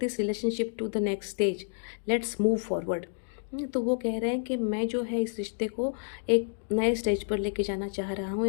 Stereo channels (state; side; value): silent; right; digital silence